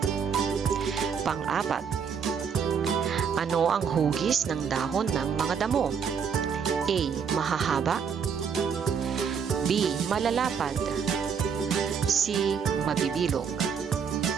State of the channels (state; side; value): quieter; left; 6.7 dB